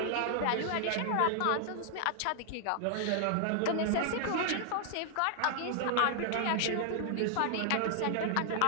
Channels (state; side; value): different; both; correlation 0.00